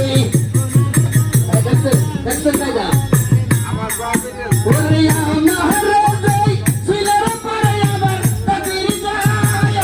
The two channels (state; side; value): identical; both; correlation 1.00